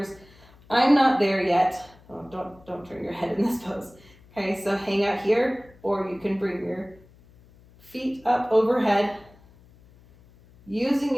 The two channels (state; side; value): noise; left; hum, 26 dB below the sound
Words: I'm not there yet. Oh, don't turn your head in this pose. Okay, so hang out here, or you can bring your feet up overhead, using